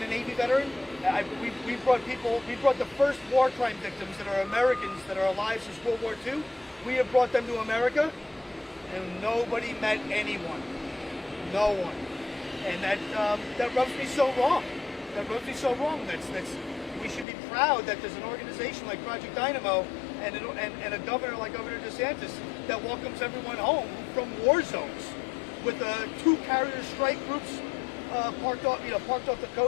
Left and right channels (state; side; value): drops out; right; at 17.2 s